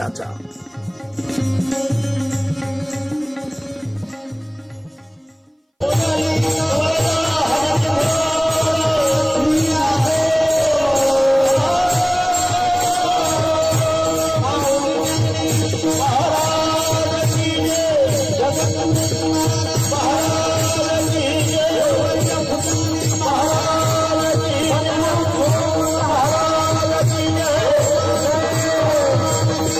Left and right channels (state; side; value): identical; both; correlation 1.00